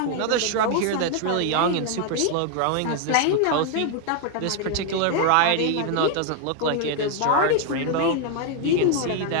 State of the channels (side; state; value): both; different; correlation 0.00